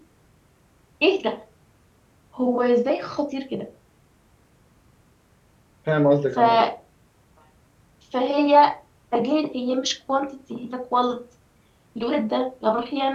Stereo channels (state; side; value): identical; both; correlation 1.00